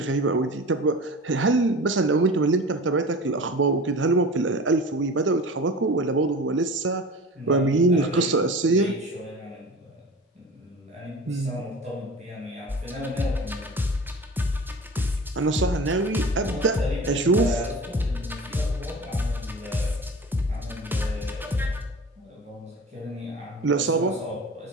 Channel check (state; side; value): normal; both; correlation 0.37